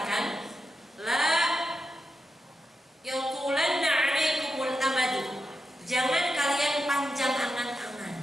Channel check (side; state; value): both; normal; correlation 0.88